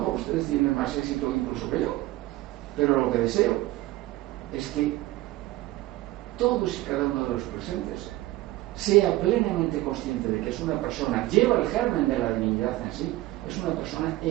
ustedes tienen más éxito incluso que yo, pero lo que deseo es que todos y cada uno de los presentes sea plenamente consciente de que es una persona, lleva el germen de la divinidad en sí, es una persona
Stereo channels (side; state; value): left; quieter; 17.3 dB